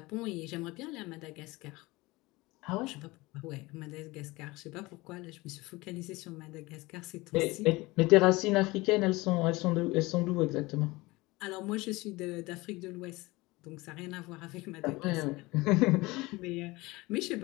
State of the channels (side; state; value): right; quieter; 21.8 dB